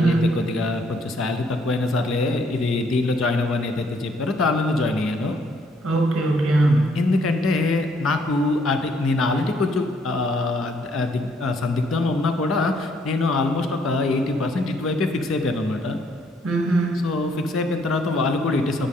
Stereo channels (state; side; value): normal; both; correlation 0.67